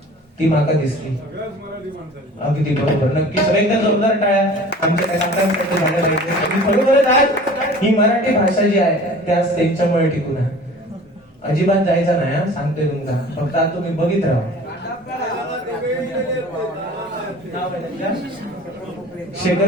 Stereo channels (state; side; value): normal; both; correlation 0.44